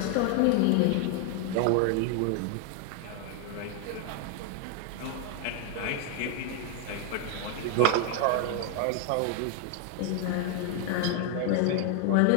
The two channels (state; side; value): different; both; correlation 0.00